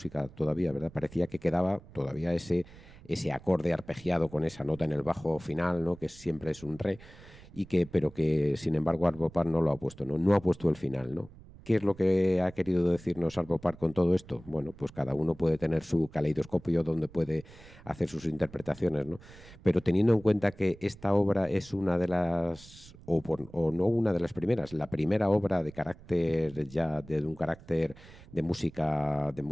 todavía, ¿verdad? Parecía que quedaba todavía ese acorde arpegiado con esa nota en el bajo final, ¿no? Que siempre es un re, pero que sin embargo Arvo Pärt no lo ha puesto, ¿no? No ha puesto el final, ¿no? ¿Qué es lo que ha querido decirnos Arvo Pärt con todo esto? Bueno, pues cada uno puede tener su caleidoscopio donde puede hacer sus interpretaciones, ¿no? Pero teniendo en cuenta que esta obra es una de las, o no una de las primeras, la primera obra de carácter ya, de un carácter de música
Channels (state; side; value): noise; right; rumble, 21 dB below the sound